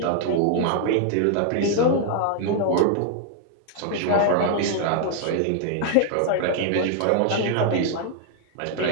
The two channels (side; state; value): both; different; correlation 0.00